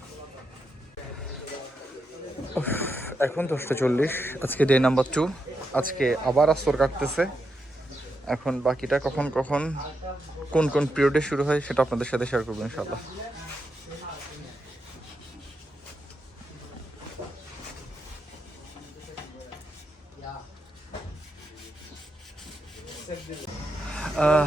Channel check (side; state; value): both; normal; correlation 0.84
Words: এখন 10:40, আজকে ডে নাম্বার 2। আজকে আবার আস্তর কাটতেছে। এখন বাকিটা কখন কখন কোন কোন পিরিয়ডে শুরু হয় সেটা আপনাদের সাথে শেয়ার করবো ইনশাল্লাহ।